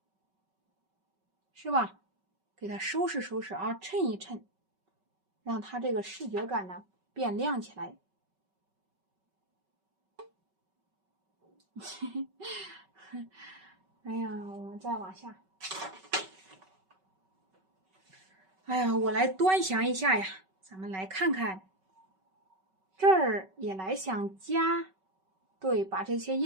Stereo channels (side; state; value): left; late; 5.3 ms